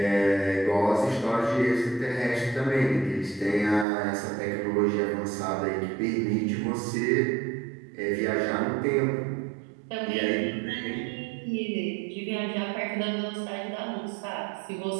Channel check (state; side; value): drops out; left; at 3.9 s